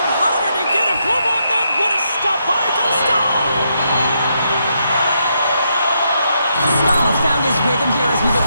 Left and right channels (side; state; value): both; inverted; correlation -0.79